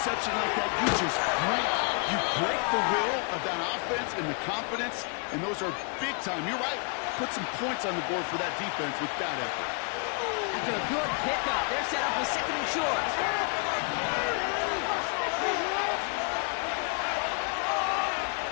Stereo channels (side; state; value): right; quieter; 37.4 dB